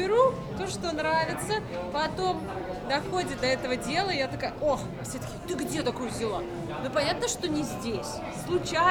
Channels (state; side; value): identical; both; correlation 1.00